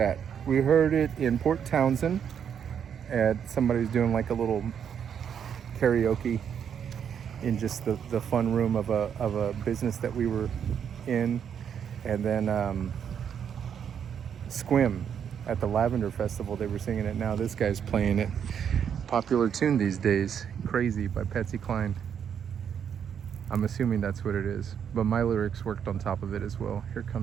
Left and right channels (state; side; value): quieter; left; 8.1 dB